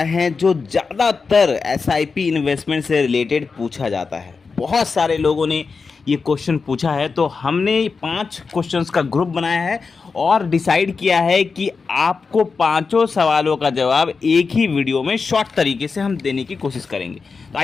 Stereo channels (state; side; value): quieter; right; 4.8 dB